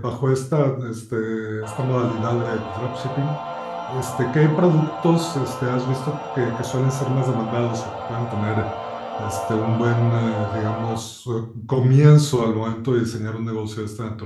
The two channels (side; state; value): both; identical; correlation 1.00